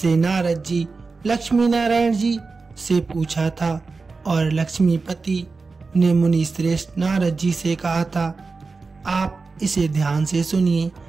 नारद जी लक्ष्मी नारायण जी से पूछा था और लक्ष्मीपति ने मुनि श्रेष्ठ नारद जी से कहा था, आप इसे ध्यान से सुनिए।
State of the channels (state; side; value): quieter; left; 4.2 dB